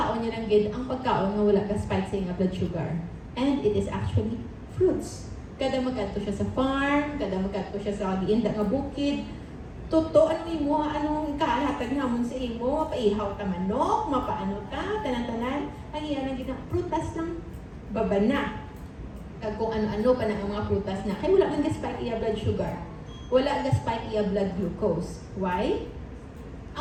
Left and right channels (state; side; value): identical; both; correlation 1.00